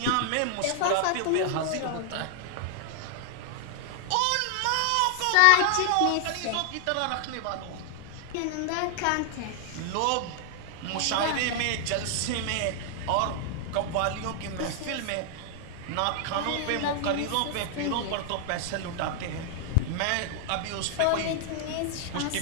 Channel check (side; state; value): both; different; correlation 0.00